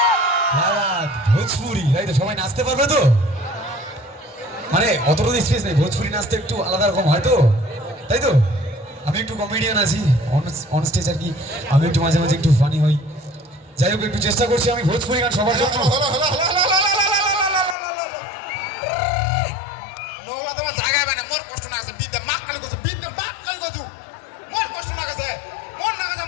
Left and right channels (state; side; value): drops out; right; at 17.8 s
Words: ভোজপুরি, তাই তো? সবাই নাচতে পারবে তো? মানে অতটুকু স্পেস নেই, ভোজপুরি নাচতে একটু আলাদা রকম হয় তো, তাই তো? আমি একটু কমেডিয়ান আছি অন স্টেজ আর কি, আমি একটু মাঝে মাঝে একটু ফানি হই। যাই হোক, একটু চেষ্টা করছি আমি ভোজপুরি গান সবার জন্য। জায়গা পায় না, মোর কষ্ট না গেছে, বিদ্যা মাক কালি গেছে, বিদ্যা মাক কালি গেছু, মোর কষ্ট না গেছে, মোর না গেছে,